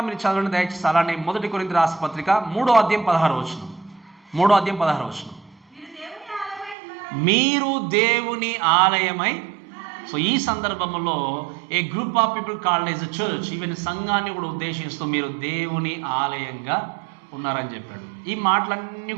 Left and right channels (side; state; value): left; drops out; at 6.8 s